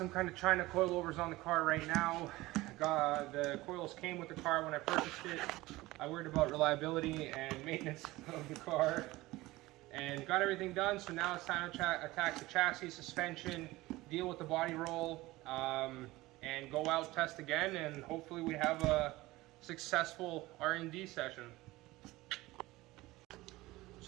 kind of China coilovers on the car right now. The coils came with the car when I purchased it. I worried about reliability and maintenance of the car, and got everything done. So now it's time to attack the chassis, suspension, deal with the body roll, and go out, test again, and hopefully we have a successful R&D session.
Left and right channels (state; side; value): quieter; left; 19.2 dB